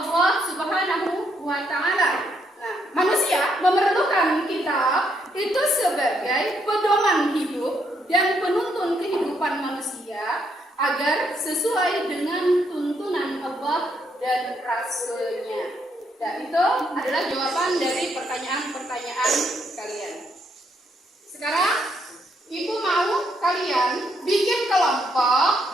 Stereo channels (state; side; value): normal; both; correlation 0.75